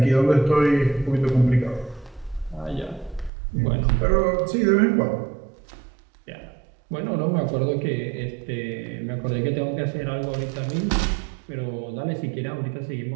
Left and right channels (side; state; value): left; drops out; at 3.3 s